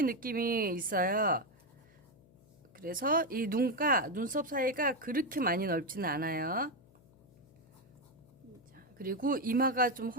느낌이 있어요. 그래서 이 눈가 눈썹 사이가 그렇게 많이 넓지는 않아요. 자, 그리고 이마가 좀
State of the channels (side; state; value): left; noise; hum, 28 dB below the sound